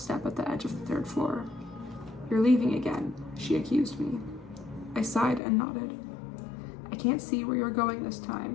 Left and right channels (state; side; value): drops out; right; at 5.4 s